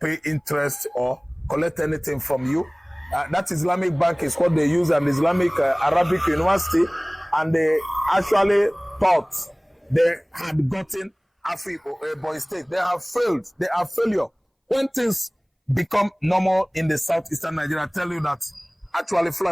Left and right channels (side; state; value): both; identical; correlation 1.00